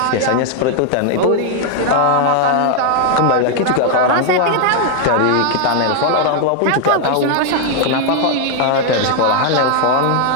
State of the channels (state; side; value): different; both; correlation 0.00